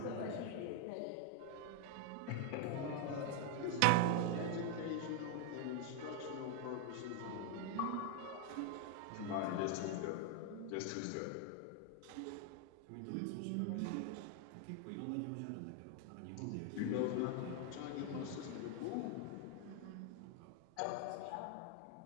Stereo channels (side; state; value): both; different; correlation 0.00